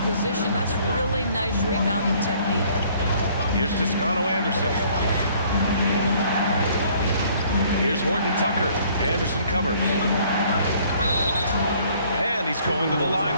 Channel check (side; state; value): both; inverted; correlation -0.59